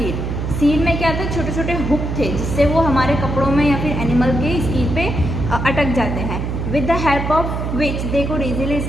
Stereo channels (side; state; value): right; noise; hum, 3 dB below the sound